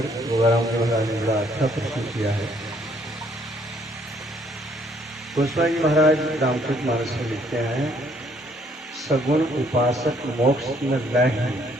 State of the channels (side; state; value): both; normal; correlation 0.66